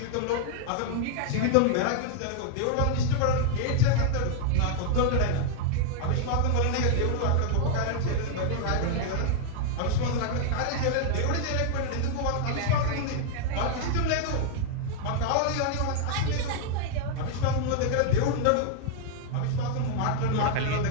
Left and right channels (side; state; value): both; different; correlation -0.01